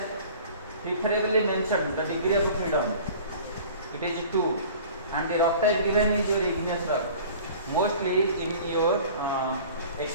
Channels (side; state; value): both; inverted; correlation -0.44